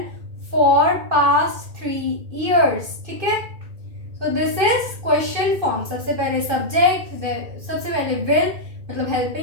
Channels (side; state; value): left; late; 2.6 ms